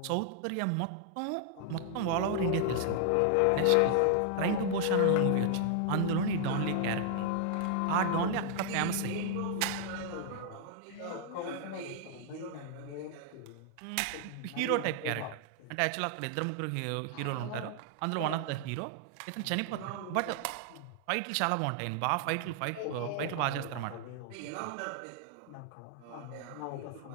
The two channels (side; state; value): both; different; correlation -0.01